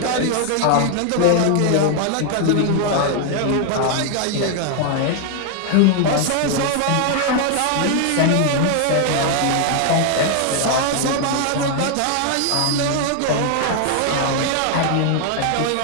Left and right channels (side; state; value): both; different; correlation 0.00